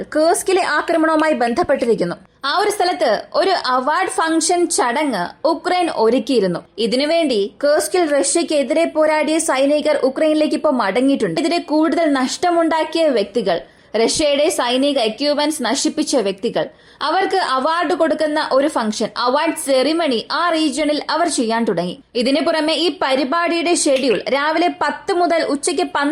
കുർസ്കിലെ ആക്രമണവുമായി ബന്ധപ്പെട്ടിരിക്കുന്നു. ആ ഒരു സ്ഥലത്ത് ഒരു അവാർഡ് ഫംഗ്ഷൻ ചടങ്ങ് ഉക്രൈൻ ഒരുക്കിയിരുന്നു. ഇതിനുവേണ്ടി കുർസ്കിൽ റഷ്യക്കെതിരെ പോരാടിയ സൈനികർ ഉക്രൈനിലേക്ക് ഇപ്പോൾ മടങ്ങിയിട്ടുണ്ട്. ഇതിനെ കൂടുതൽ നഷ്ടമുണ്ടാക്കിയ വ്യക്തികൾ, റഷ്യയുടെ സൈനിക എക്യുപ്മെന്റ്സ് നശിപ്പിച്ച വ്യക്തികൾ, അവർക്ക് അവാർഡ് കൊടുക്കുന്ന ഒരു ഫംഗ്ഷൻ, അവാർഡ് സെറിമണി ആ റീജിയണിൽ അവർ ചെയ്യാൻ തുടങ്ങി. ഇതിനു പുറമെ ഈ പരിപാടിയുടെ ഷെഡ്യൂൾ രാവിലെ 10 മുതൽ ഉച്ചയ്ക്ക്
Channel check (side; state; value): both; identical; correlation 1.00